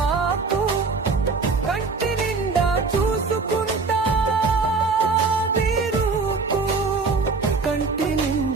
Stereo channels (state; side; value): quieter; left; 4.3 dB